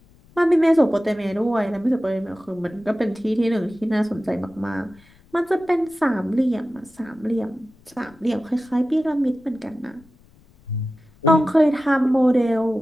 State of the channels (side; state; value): left; noise; rumble, 29 dB below the sound